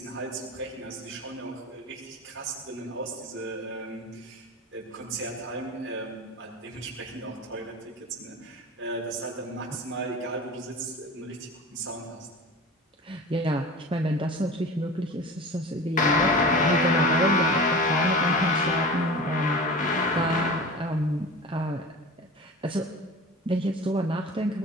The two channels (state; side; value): normal; both; correlation 0.34